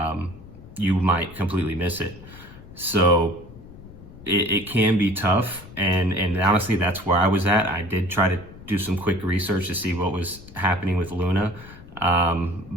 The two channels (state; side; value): noise; left; rumble, 18 dB below the sound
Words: you might completely miss it. So it can be tough, and honestly, that's where I was at. I did try to do some quick research to see what was happening with Luna,